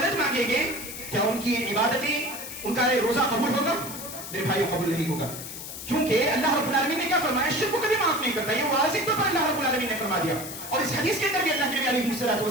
مانگیں گے، کیا ان کی عبادتیں، ان کا روزہ قبول ہوگا؟ میرے بھائیوں قبول نہیں ہوگا، کیونکہ اللہ رب العالمین نے کیا فرمایا؟ شرک کو کبھی معاف نہیں کرتا، یہ واضح طور پر اللہ رب العالمین نے فرما دیا۔ اور اس حدیث کے اندر بھی اللہ کے نبی علیہ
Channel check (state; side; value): noise; left; hiss, 10 dB below the sound